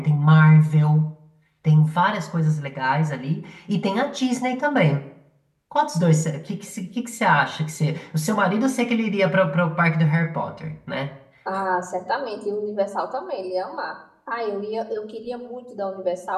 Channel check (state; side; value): identical; both; correlation 1.00